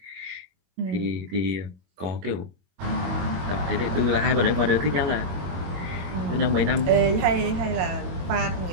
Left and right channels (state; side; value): late; left; 22 ms